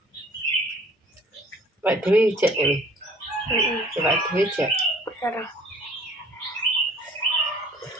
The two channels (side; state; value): both; normal; correlation 0.52